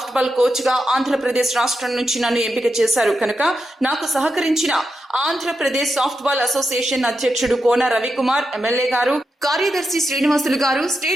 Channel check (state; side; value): normal; both; correlation 0.87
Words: బాల్ కోచ్ గా ఆంధ్రప్రదేశ్ రాష్ట్రం నుంచి నన్ను ఎంపిక చేశారు కనుక నాకు సహకరించిన ఆంధ్రప్రదేశ్ సాఫ్ట్ బాల్ అసోసియేషన్ అధ్యక్షుడు కోన రవికుమార్ ఎమ్మెల్యే గారు, కార్యదర్శి శ్రీనివాసులు గారు,